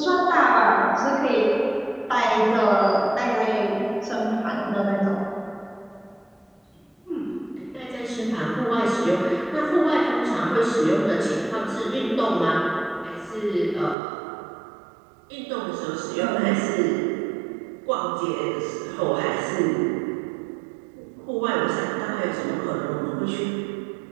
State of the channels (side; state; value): left; drops out; at 14.0 s